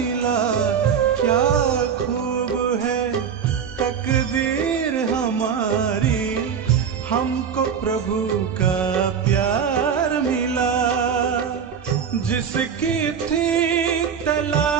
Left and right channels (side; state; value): left; quieter; 7.3 dB